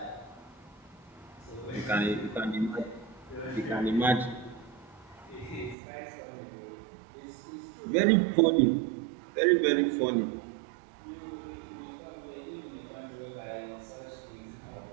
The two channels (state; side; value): drops out; left; at 5.8 s